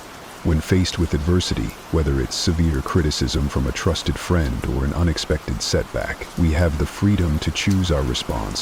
When faced with adversity, whether it's severe criticism from a trusted friend or an unexpected setback, we have the freedom to choose our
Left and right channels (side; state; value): both; identical; correlation 1.00